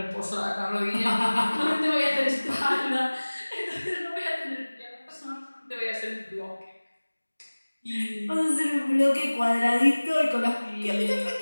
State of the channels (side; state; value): both; inverted; correlation -1.00